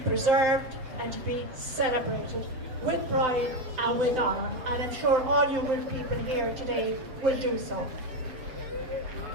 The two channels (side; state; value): left; late; 7.8 ms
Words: and to be celebrated with pride and with honour. And I'm sure all you good people here today will do so.